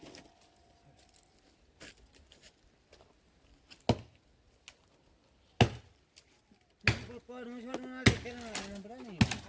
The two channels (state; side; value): identical; both; correlation 1.00